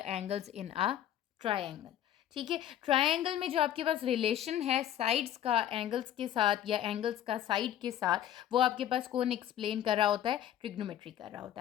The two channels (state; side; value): quieter; right; 11.3 dB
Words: angles in a triangle. ठीक है, ट्रायंगल में जो आपके पास रिलेशन है साइड्स का एंगल्स के साथ या एंगल्स का साइड के साथ, वो आपके पास कौन एक्सप्लेन कर रहा होता है? ट्रिग्नोमेट्री कर रहा होता